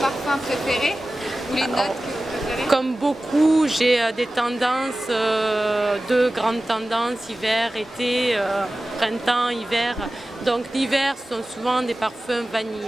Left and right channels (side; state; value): both; normal; correlation 0.96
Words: parfum préféré? Ou les notes que vous préférez? Comme beaucoup, j'ai des tendances, 2 grandes tendances, hiver, été, printemps, hiver. Donc l'hiver sont souvent des parfums